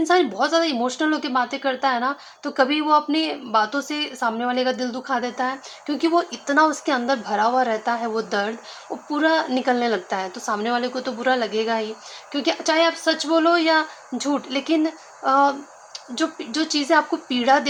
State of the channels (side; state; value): both; identical; correlation 1.00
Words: बहुत ज़्यादा इमोशनल होके बातें करता है ना, तो कभी वो अपनी बातों से सामने वाले का दिल दुखा देता है, क्योंकि वो इतना उसके अंदर भरा हुआ रहता है वो दर्द, वो पूरा निकलने लगता है, तो सामने वाले को तो बुरा लगेगा ही, क्योंकि चाहे आप सच बोलो या झूठ, लेकिन जो चीज़ें आपको पीड़ा